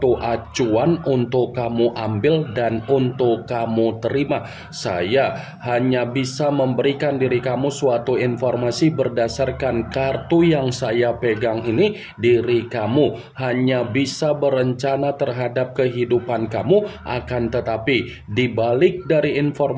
acuan untuk kamu ambil dan untuk kamu terima. Saya hanya bisa memberikan diri kamu suatu informasi berdasarkan kartu yang saya pegang ini. Diri kamu hanya bisa berencana terhadap kehidupan kamu, akan tetapi di balik dari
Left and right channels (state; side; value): identical; both; correlation 1.00